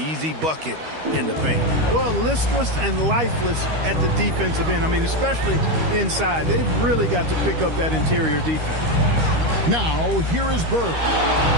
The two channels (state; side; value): late; left; 13 ms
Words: bucket in the paint. Well, listless and lifeless at the defensive end. I mean, especially inside. They've really got to pick up that interior defense. Now, here is Bird.